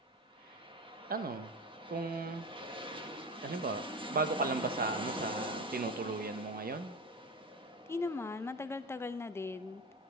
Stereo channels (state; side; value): normal; both; correlation 0.26